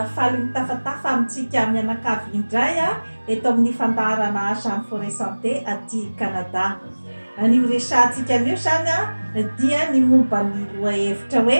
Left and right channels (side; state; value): both; inverted; correlation -1.00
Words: faly mitafatafa amintsika mianakavy indray eto amin'ny fandaharana Jean Forêt Santé aty Canada. An'io resahantsika an'io zany dia ny momba ny lohahevitra